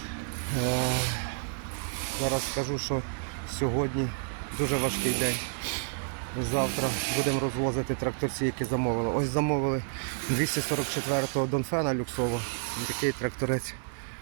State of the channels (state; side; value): silent; left; 58 dB below the other